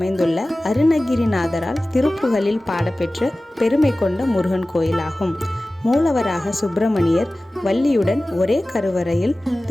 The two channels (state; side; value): normal; both; correlation 0.97